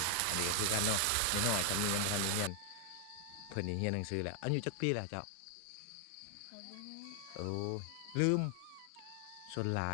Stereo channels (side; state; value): both; different; correlation 0.00